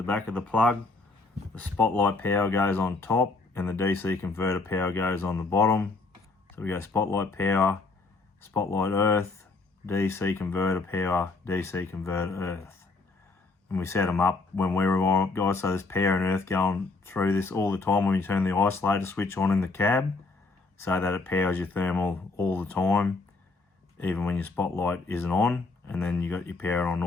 back of the plug, the spotlight power goes on top and the DC converter power goes on the bottom. So we go spotlight power, spotlight earth, DC converter power, DC converter earth. And we set them up when we rewire up, guys, so there's power and earth going through this all the time when you turn the isolator switch on in the cab, so that it powers your thermal all the time, even when your spotlight isn't on. And then you got your power on and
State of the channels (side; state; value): right; quieter; 3.6 dB